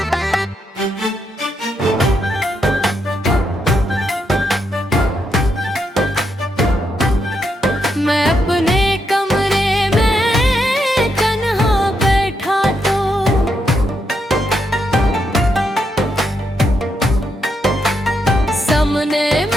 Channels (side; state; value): both; normal; correlation 0.80